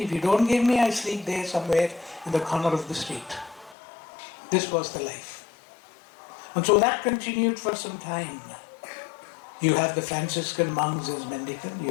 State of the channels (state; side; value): drops out; right; at 3.8 s